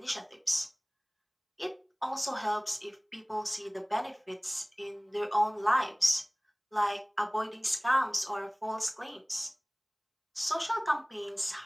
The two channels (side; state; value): both; identical; correlation 1.00